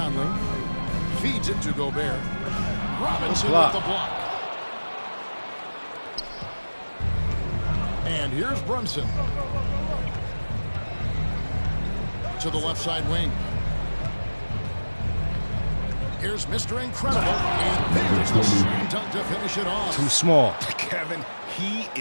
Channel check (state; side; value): inverted; both; correlation -1.00